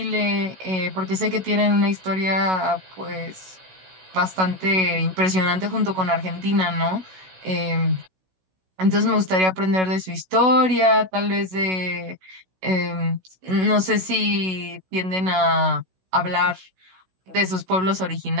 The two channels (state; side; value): late; left; 16 ms